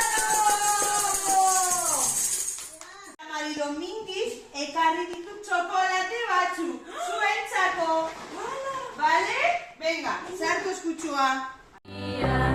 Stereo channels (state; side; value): identical; both; correlation 1.00